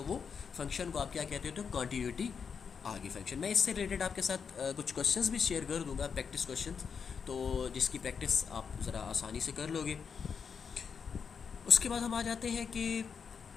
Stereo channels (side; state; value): right; quieter; 6.3 dB